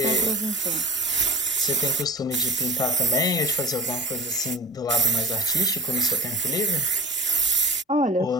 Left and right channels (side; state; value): both; normal; correlation 0.38